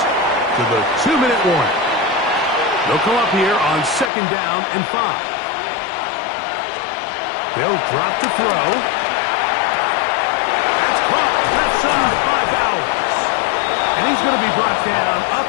to the 2-minute warning. They'll come up here on 2nd down and 5. They'll drop to throw. That's caught left side by Bowers. And he's going to be brought down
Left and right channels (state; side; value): drops out; right; at 4.1 s